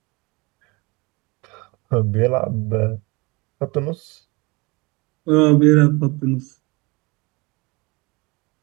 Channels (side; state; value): left; quieter; 26.1 dB